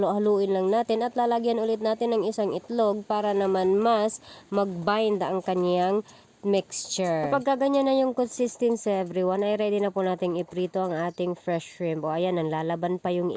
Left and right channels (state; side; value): identical; both; correlation 1.00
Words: lang natin at lalagyan ulit natin ng isang itlog para naman mas mag-bind ang kanyang mixture. Kapag ganyan na yung consistency everyone, ay ready na po nating iprito ang ating fresh shrimp. O ayan, nanlalaban pa yung